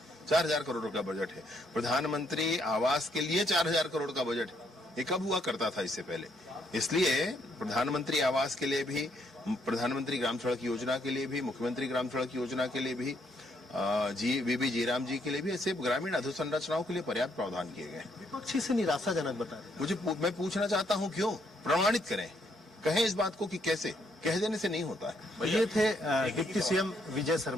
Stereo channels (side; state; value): both; normal; correlation 0.72